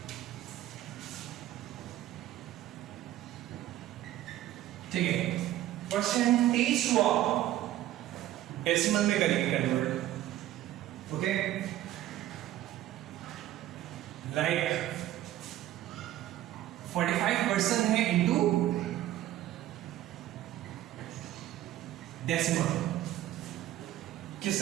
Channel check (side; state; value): left; quieter; 13.7 dB